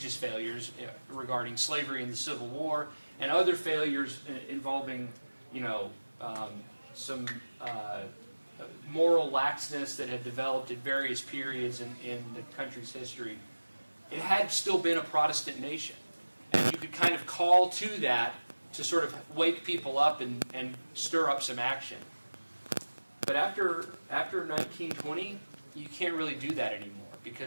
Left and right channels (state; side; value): inverted; both; correlation -1.00